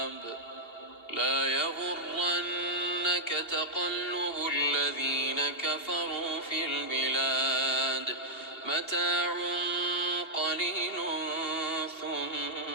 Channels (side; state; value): right; late; 2.8 ms